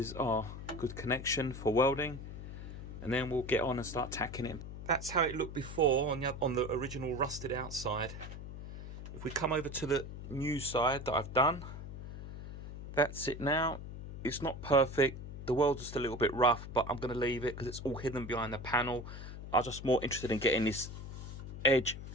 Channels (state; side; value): noise; left; hum, 9 dB below the sound